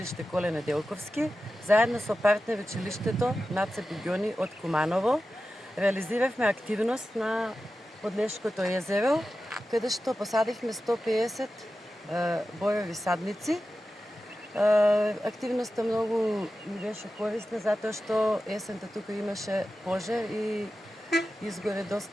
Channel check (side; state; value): both; normal; correlation 0.93